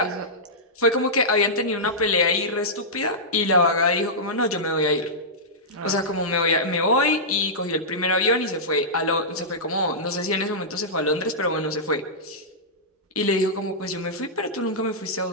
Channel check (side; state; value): both; normal; correlation -0.14